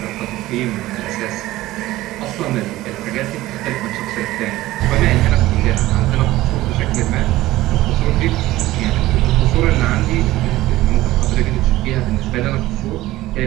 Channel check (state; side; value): quieter; left; 16.8 dB